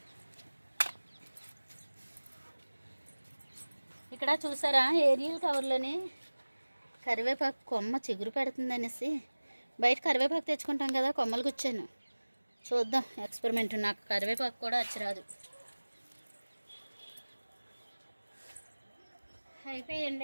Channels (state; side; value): inverted; both; correlation -1.00